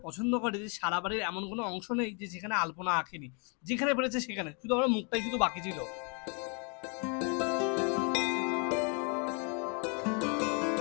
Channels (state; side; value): quieter; right; 35.9 dB